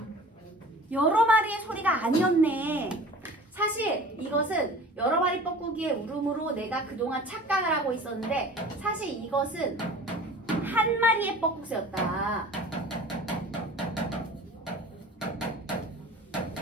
여러 마리의 소리가 아니었네. 사실 이것은 여러 마리 뻐꾸기의 울음으로 내가 그동안 착각을 하고 있었는데 사실 이것은 한 마리의 뻐꾹새였다.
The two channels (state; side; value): normal; both; correlation 0.43